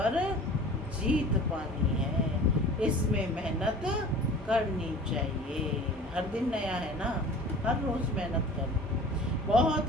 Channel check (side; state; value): both; normal; correlation 0.42